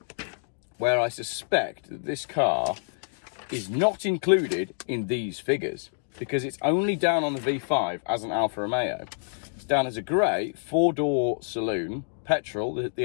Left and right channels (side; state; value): right; silent; digital silence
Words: where I suspect that this car is not included in these figures because it's only down on the V5 as an Alfa Romeo. It's down as a grey 4-door saloon, petrol,